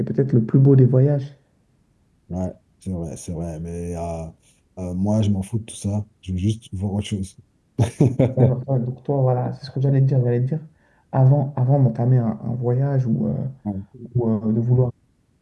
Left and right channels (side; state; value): both; identical; correlation 1.00